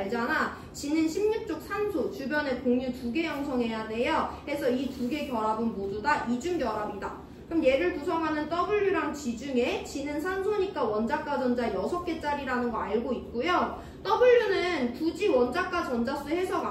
G는 16쪽 산소, 주변에 공유 2개 형성해야 돼요. 그래서 이 2개 결합은 모두 다 이중결합이다. 그럼 얘를 구성하는 W랑 G 중에 G는 산소니까 원자과 전자 6개짜리라는 거 알고 있고요. W는 굳이 원자과 전자수 해석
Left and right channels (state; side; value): identical; both; correlation 1.00